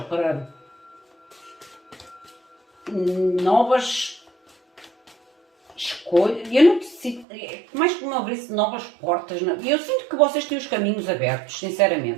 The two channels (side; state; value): left; drops out; at 7.2 s